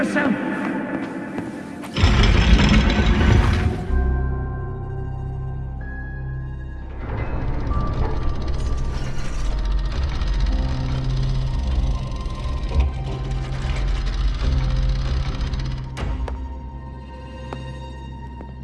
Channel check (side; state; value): both; identical; correlation 1.00